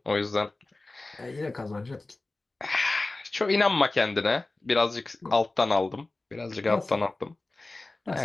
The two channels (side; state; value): right; quieter; 3.1 dB